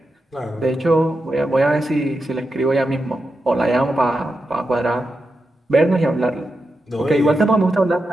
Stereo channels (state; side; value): normal; both; correlation 0.88